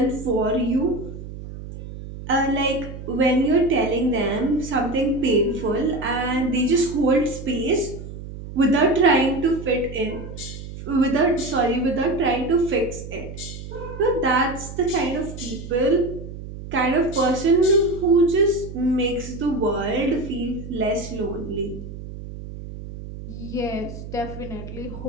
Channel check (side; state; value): right; noise; hum, 11 dB below the sound